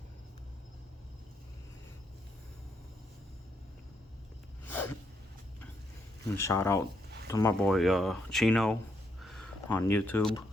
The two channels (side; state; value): both; normal; correlation 0.77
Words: And shout out to my boy Chino on YouTube.